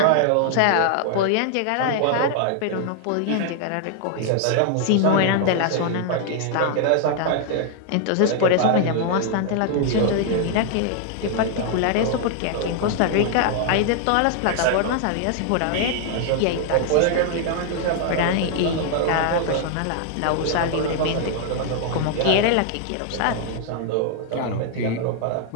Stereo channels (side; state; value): both; different; correlation 0.00